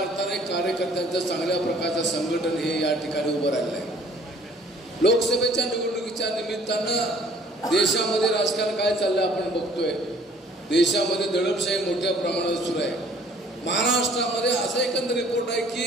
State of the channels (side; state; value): both; normal; correlation 0.56